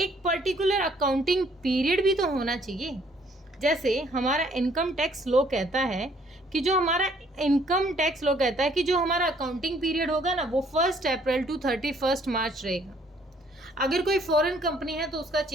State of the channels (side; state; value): both; normal; correlation 0.63